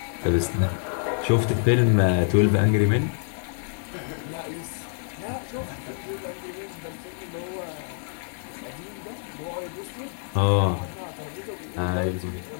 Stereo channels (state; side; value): silent; right; digital silence